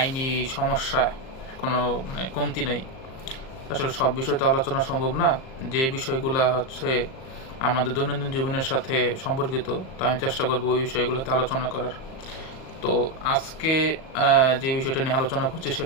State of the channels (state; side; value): late; right; 38 ms